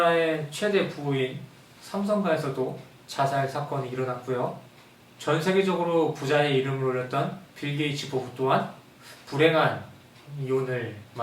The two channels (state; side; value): identical; both; correlation 1.00